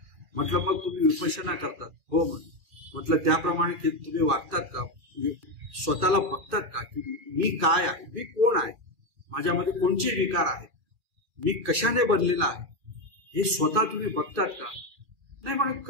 म्हटलं मग तुम्ही विपश्यना करतात? हो म्हणे. म्हटलं त्याप्रमाणे तुम्ही वागतात का? स्वतःला बघतात का की मी काय आहे, मी कोण आहे, माझ्यामध्ये कोणचे विकार आहेत, मी कशाने बनलेला आहे, हे स्वतः तुम्ही बघतात का? नाही म्हणे,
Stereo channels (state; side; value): late; left; 2.4 ms